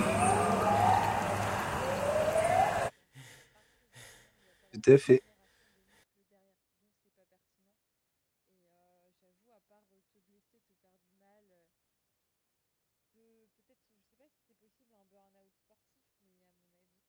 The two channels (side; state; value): both; identical; correlation 1.00